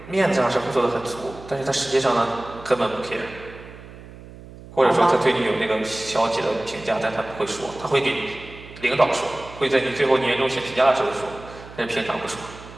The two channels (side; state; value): right; noise; hum, 17 dB below the sound